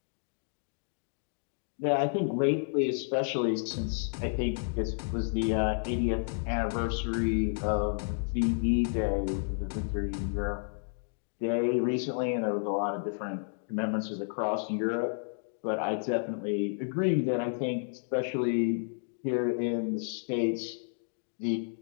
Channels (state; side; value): silent; right; digital silence